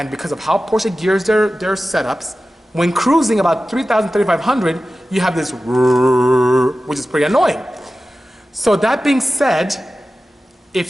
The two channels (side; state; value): both; normal; correlation 0.95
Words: because of how Porsche gears their setups, when cruising about 3,000, 3,500, you have this which is pretty annoying. So that being said,